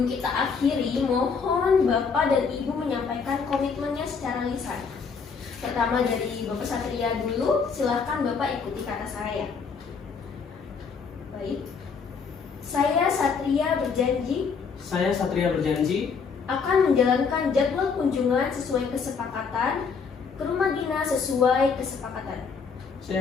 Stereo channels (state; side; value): quieter; right; 5.6 dB